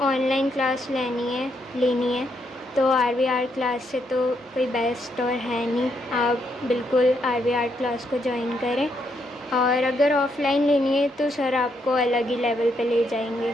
ऑनलाइन क्लास लेनी है तो RV आर्ट क्लास से तो कोई बेस्ट और है नहीं। आप बिल्कुल RV आर्ट क्लास को ज्वाइन करें, और अगर ऑफ़लाइन लेनी है तो सर आपको अलग ही लेवल पे ले जाएंगे।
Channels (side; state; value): both; normal; correlation 0.77